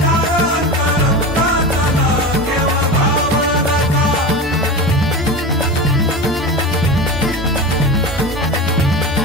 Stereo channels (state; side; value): normal; both; correlation 0.26